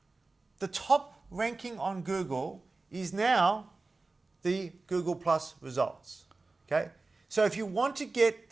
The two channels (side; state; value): left; quieter; 3.5 dB